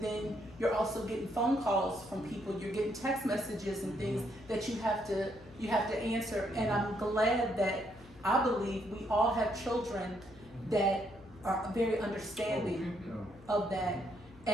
then you're also getting phone calls from people, you're getting text messages and things that you have to answer. And I'm glad that I believe we all have children that are very understanding of that.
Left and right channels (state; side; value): noise; left; hum, 23 dB below the sound